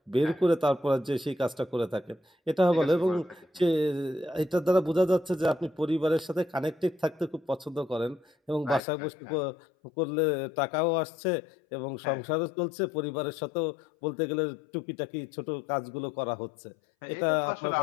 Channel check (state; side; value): drops out; right; at 8.8 s